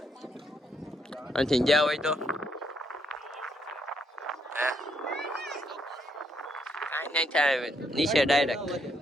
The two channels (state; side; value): normal; both; correlation 0.74